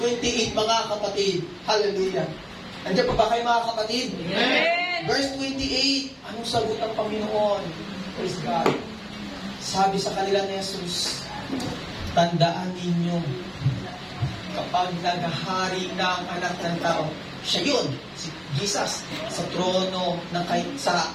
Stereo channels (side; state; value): both; identical; correlation 1.00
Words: mga kapatid. Hallelujah. Nandiyan pa ba kayo, mga kapatid? Amen! Verse 28, anong sagot ng Panginoon? Praise God. Sabi sa kanila ni Jesus, tandaan ninyo, kapag naghahari na ang anak ng tao, siya yun, si Jesus, sa trono, sa